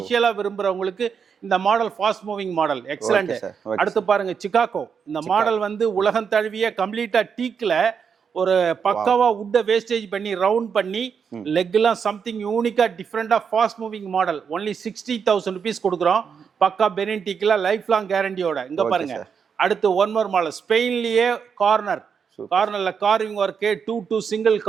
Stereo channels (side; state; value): left; quieter; 6.6 dB